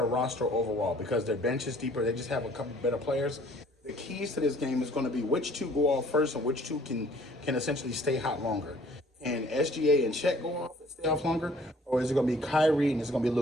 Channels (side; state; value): both; normal; correlation 0.56